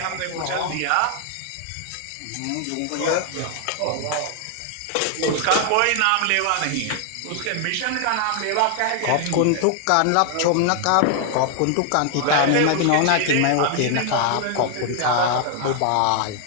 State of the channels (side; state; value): both; different; correlation 0.00